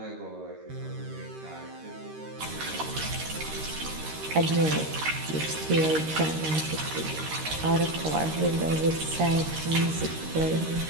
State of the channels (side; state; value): left; late; 13 ms